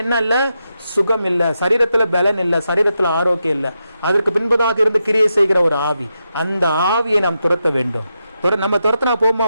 என்ன இல்ல? சுகம் இல்ல, சரீரத்துல பலன் இல்ல, சரீரத்துல ஆரோக்கியம் இல்ல. அதற்கு பின்பதாக இருந்து கிரியை செய்கிற ஒரு ஆவி, அந்த ஆவியை நாம் துரத்த வேண்டும். நம்ம துரத்தினா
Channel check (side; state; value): both; inverted; correlation -0.86